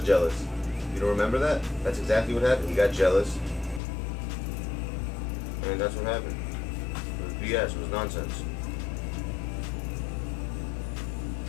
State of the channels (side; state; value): right; drops out; at 3.8 s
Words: jealous. You don't remember that? That's exactly what happened. He got jealous. And that's what happened. It was BS. It was nonsense.